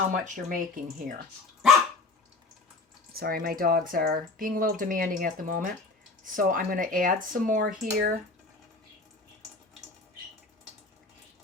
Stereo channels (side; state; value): right; quieter; 3.5 dB